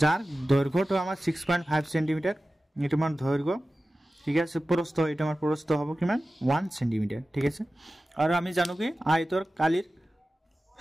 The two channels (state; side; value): normal; both; correlation 0.95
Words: যাৰ দৈৰ্ঘ্যটো আমাৰ 6.5 সেন্টিমিটাৰ এইটো মান দৈৰ্ঘ্য ঠিক আছে প্ৰস্থ এটা আমাৰ প্ৰস্থ হ'ব কিমান 1 সেন্টিমিটাৰ ঠিক আছে আৰু আমি জানো কি আয়তৰ কালিৰ